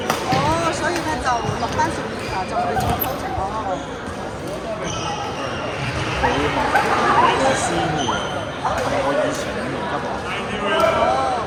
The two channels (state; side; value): identical; both; correlation 1.00